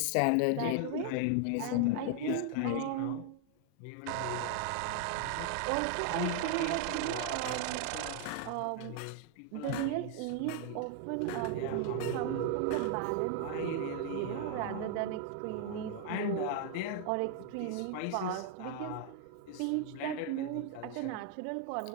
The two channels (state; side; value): different; both; correlation 0.00